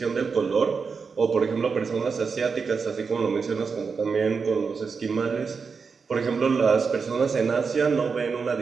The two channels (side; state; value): left; quieter; 5.3 dB